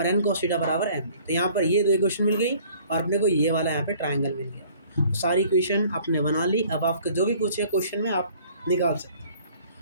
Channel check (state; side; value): inverted; both; correlation -0.54